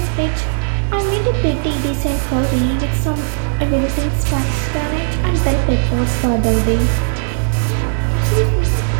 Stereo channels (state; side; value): silent; left; 66 dB below the other